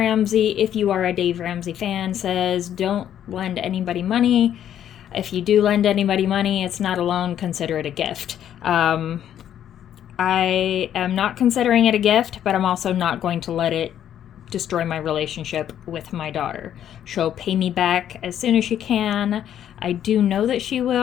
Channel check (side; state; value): right; quieter; 10.4 dB